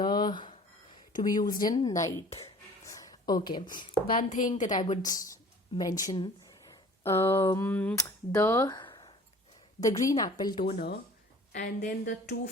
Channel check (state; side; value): normal; both; correlation 0.48